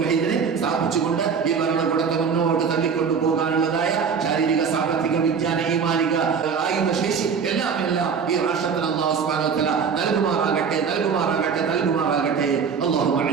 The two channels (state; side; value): quieter; left; 6.2 dB